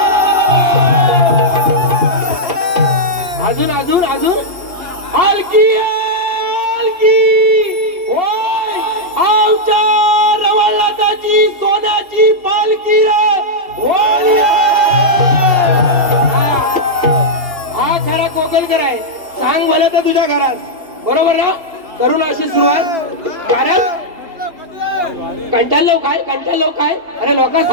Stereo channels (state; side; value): late; left; 2.7 ms